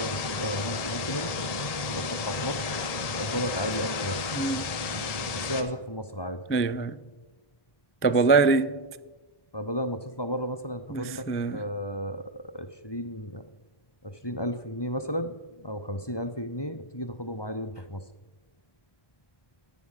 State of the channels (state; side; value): late; right; 1.7 ms